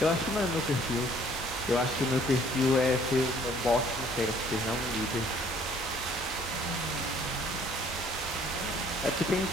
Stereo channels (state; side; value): normal; both; correlation 0.59